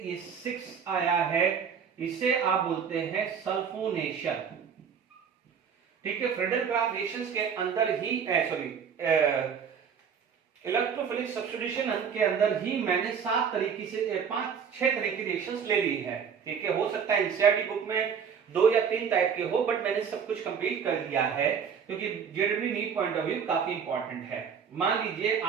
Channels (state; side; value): quieter; left; 7.0 dB